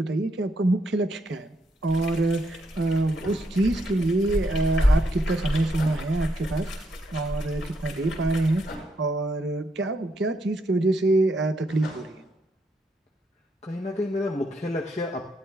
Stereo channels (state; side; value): normal; both; correlation 0.77